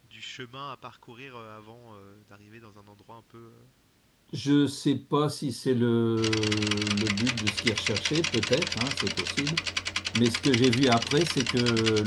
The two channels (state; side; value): identical; both; correlation 1.00